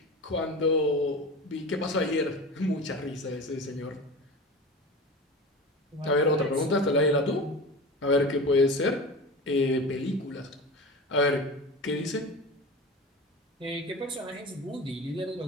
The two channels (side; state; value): both; normal; correlation 0.31